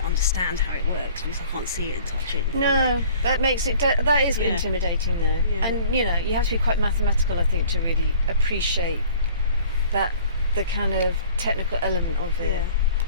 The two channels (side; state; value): both; inverted; correlation -0.50